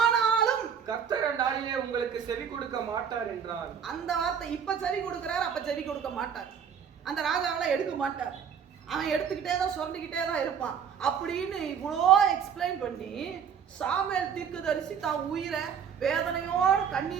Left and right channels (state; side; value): quieter; left; 7.6 dB